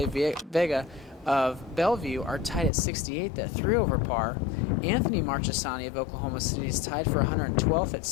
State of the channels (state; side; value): drops out; right; at 2.7 s